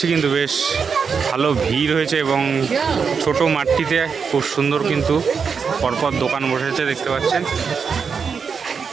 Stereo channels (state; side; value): quieter; left; 5.9 dB